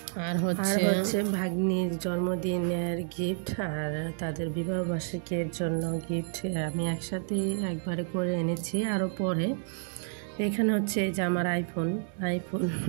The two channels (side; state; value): left; silent; digital silence